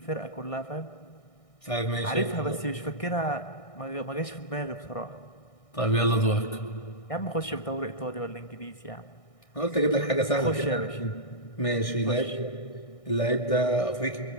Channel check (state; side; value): late; right; 1.6 ms